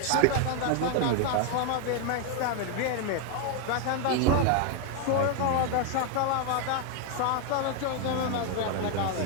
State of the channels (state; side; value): different; both; correlation 0.01